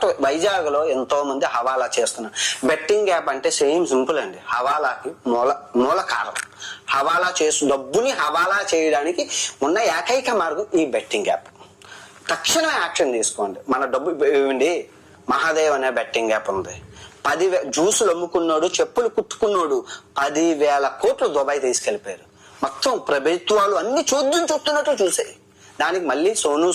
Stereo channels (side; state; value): both; identical; correlation 1.00